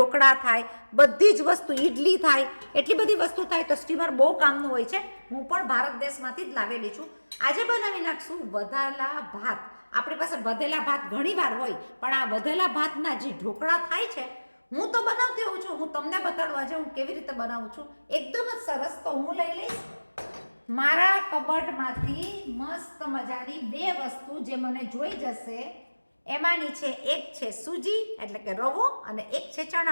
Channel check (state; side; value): inverted; both; correlation -1.00